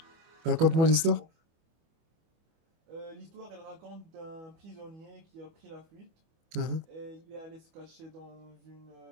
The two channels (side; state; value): left; late; 25 ms